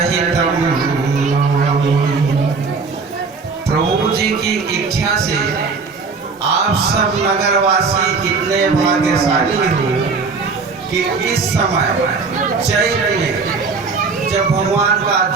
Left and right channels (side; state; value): left; quieter; 4.6 dB